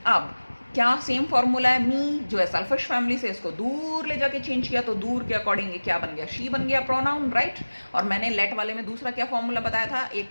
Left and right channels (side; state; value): both; inverted; correlation -1.00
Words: अब क्या सेम फॉर्मूला है? मी जो है सेल्फिश फैमिली से इसको दूर ले जाके चेंज किया तो दूर के अकॉर्डिंग क्या बन गया? शी बन गया प्रोनाउन, राइट. और मैंने लेट वाले में दूसरा क्या फॉर्मूला बताया था? एक